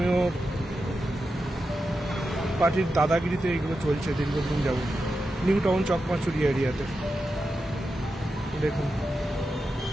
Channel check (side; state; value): both; normal; correlation 0.89